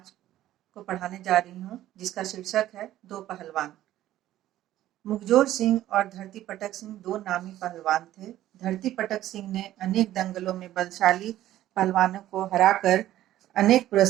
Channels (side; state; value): left; quieter; 13.6 dB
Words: को पढ़ाने जा रही हूँ, जिसका शीर्षक है दो पहलवान। मुखजोर सिंह और धरती पटक सिंह दो नामी पहलवान थे। धरती पटक सिंह ने अनेक दंगलों में बलशाली पहलवानों को हराकर अनेक